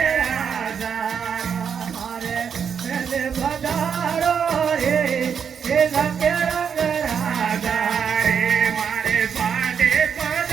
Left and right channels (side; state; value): left; quieter; 7.1 dB